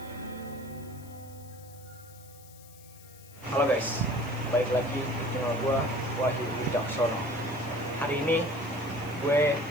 Halo guys, balik lagi di channel gue, Wahyu Wicaksono. Hari ini gue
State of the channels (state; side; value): noise; left; hiss, 22 dB below the sound